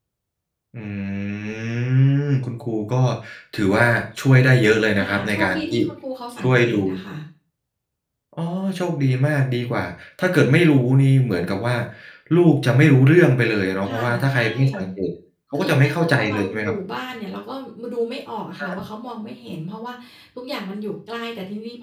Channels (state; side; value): identical; both; correlation 1.00